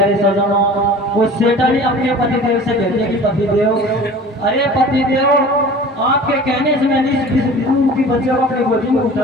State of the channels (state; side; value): normal; both; correlation 0.41